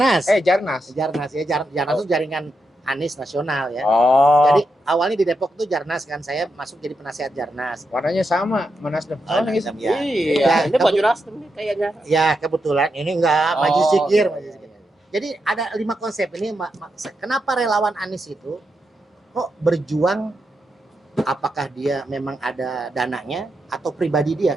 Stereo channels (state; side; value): normal; both; correlation 0.85